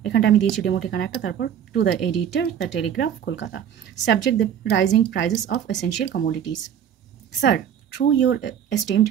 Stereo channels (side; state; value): left; quieter; 9.1 dB